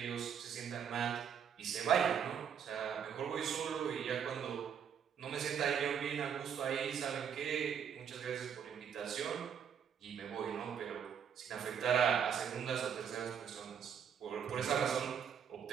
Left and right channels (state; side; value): quieter; left; 7.8 dB